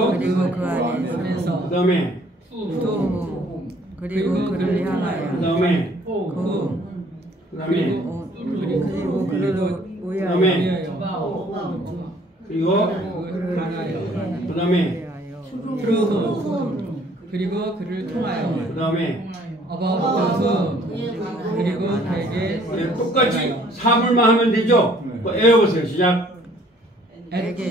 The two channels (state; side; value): normal; both; correlation 0.59